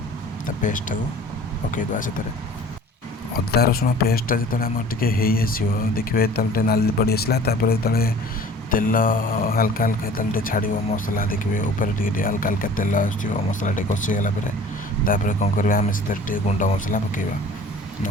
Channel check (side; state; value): both; normal; correlation 0.46